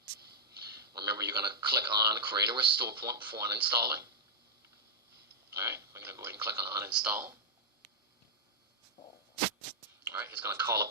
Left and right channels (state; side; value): normal; both; correlation -0.06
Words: Remember, you're going to click on Create a Restore Point before uninstalling. All right, we're going to go ahead and click on Uninstall. All right, it's going to call